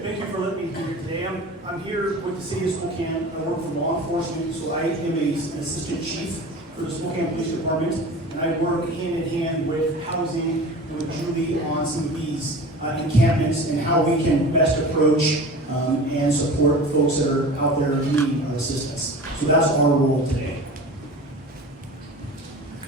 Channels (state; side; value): normal; both; correlation 0.36